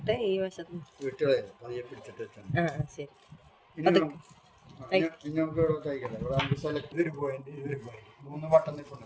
ഈ വശത്ത് വിട്ടുകളെ പതിയെ പിടിച്ചിട്ട് വെച്ചാൽ ഇനി നമുക്ക് ഇവിടെ തയ്ക്കല്ലേ. ഇവിടെ നമുക്ക് സെലക്ട് ഇതൊരു പോയിന്റ്, ഇതൊരു പോയിന്റ്, 3 ബട്ടൺ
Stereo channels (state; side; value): identical; both; correlation 1.00